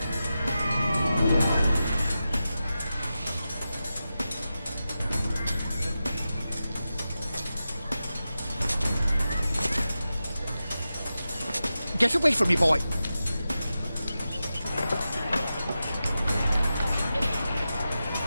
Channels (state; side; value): inverted; both; correlation -0.92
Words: Get away from me, boy!